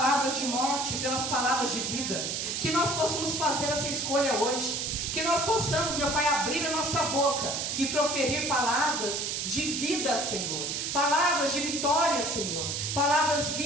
de morte pelas palavras de vida, que nós possamos fazer essa escolha hoje, que nós possamos, meu Pai, abrir a nossa boca e proferir palavras de vida, Senhor, palavras de vitória, Senhor, palavras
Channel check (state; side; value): noise; right; hiss, 2 dB below the sound